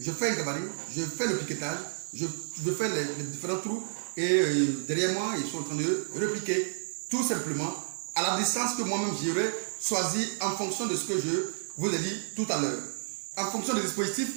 fais un gabarit, je fais le piquetage, je fais les différents trous, et derrière moi, ils sont en train de repiquer, tout simplement, à la distance que moi-même j'aurais choisi en fonction de ce que je vous ai dit tout à l'heure. En fonction des dispositifs,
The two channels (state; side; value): silent; left; 58 dB below the other